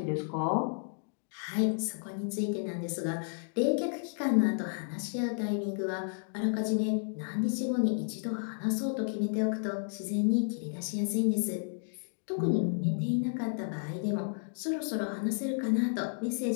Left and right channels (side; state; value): right; silent; digital silence